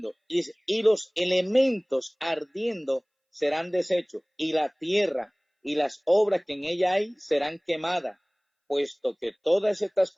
y los elementos ardiendo serán deshechos, y la tierra y las obras que en ella hay serán quemadas. Puesto que todas estas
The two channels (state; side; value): identical; both; correlation 1.00